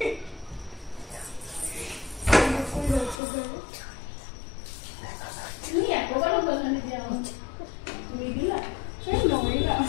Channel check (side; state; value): right; drops out; at 3.2 s